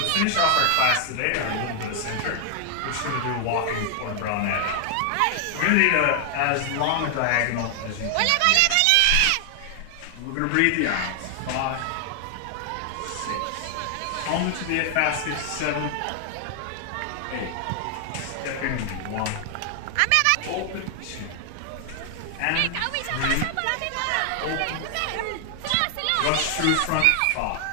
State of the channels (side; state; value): both; different; correlation 0.00